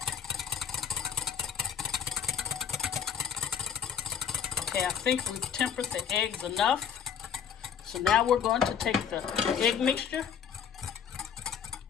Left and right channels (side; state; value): right; quieter; 7.8 dB